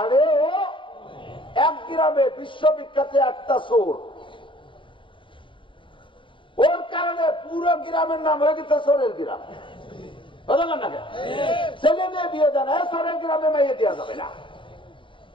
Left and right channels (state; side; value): late; right; 0.24 ms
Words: ও। এক গ্রামে বিশ্ববিখ্যাত একটা চোর, ওর কারণে পুরো গ্রামের নাম হয়ে গেছে চোরের গ্রাম। ছেলে মেয়ে বিয়ে দেয় না, চোরের গ্রামে মাইয়ে দেওয়া যাবে না,